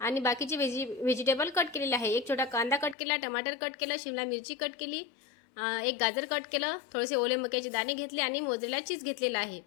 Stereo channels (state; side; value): drops out; right; at 3.0 s